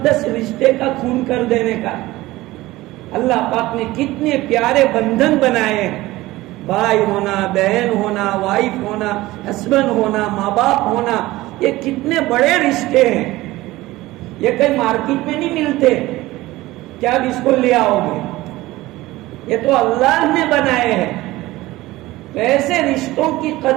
رشتے کا خون کر دینے کا. اللہ پاک نے کتنے پیارے بندھن بنائے ہیں. بھائی ہونا، بہن ہونا، وائف ہونا، ہسبینڈ ہونا، ماں باپ ہونا، یہ کتنے بڑے رشتے ہیں. یہ کہیں مارکیٹ میں نہیں ملتے کیا اب اس کو لے آؤ گے. یہ تو اللہ نے بنائے ہیں. تو ایسے رشتوں کی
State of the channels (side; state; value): left; quieter; 18.2 dB